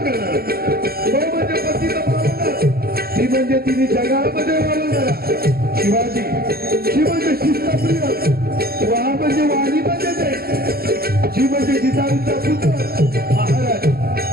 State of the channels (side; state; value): left; late; 0.44 ms